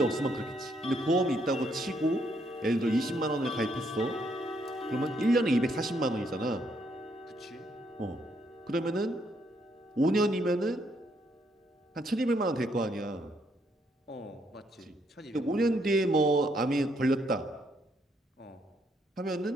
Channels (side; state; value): both; normal; correlation 0.73